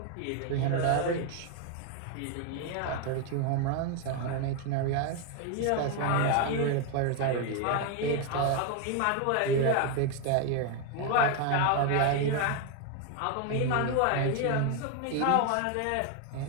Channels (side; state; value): both; different; correlation 0.01